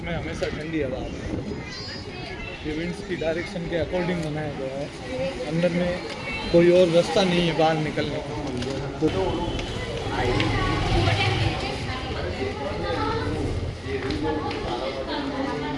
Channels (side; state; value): both; identical; correlation 1.00